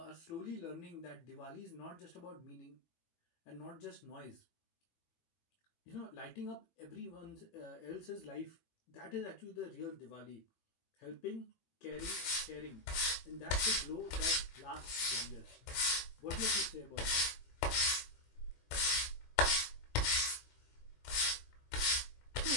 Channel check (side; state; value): right; late; 18 ms